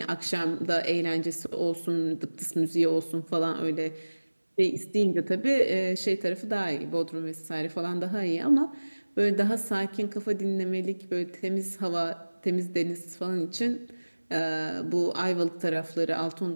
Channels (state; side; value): inverted; both; correlation -1.00